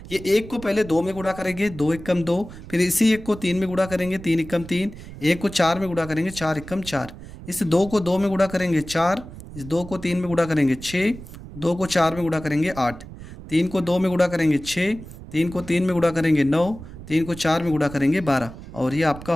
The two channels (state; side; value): noise; right; rumble, 14 dB below the sound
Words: ये एक को पहले 2 में गुणा करेंगे, 2 एकम 2, फिर इसी एक को 3 में गुणा करेंगे, 3 एकम 3, एक को 4 में गुणा करेंगे, 4 एकम 4, इस 2 को 2 में गुणा करेंगे 4, इस 2 को 3 में गुणा करेंगे 6, 2 को 4 में गुणा करेंगे 8, 3 को 2 में गुणा करेंगे 6, 3 को 3 में गुणा करेंगे 9, 3 को 4 में गुणा करेंगे 12, और ये आपका